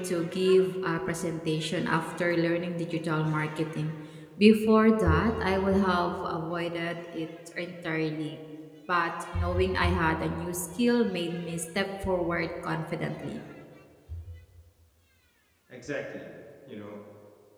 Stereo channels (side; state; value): both; identical; correlation 1.00